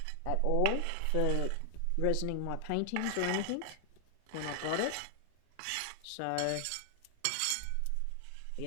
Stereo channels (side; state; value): both; different; correlation 0.00